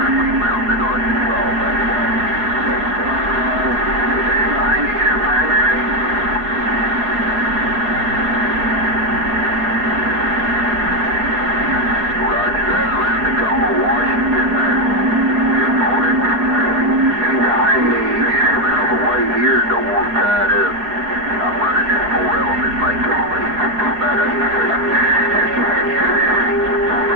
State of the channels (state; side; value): late; left; 4.8 ms